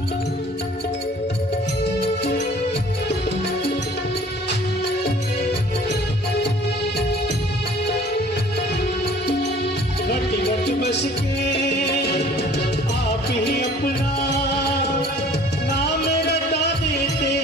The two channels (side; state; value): both; normal; correlation 0.52